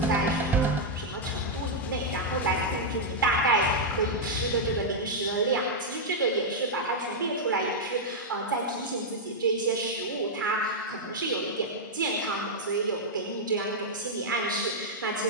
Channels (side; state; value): both; normal; correlation -0.04